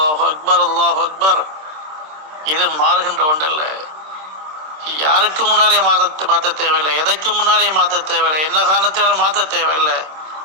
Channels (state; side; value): late; left; 26 ms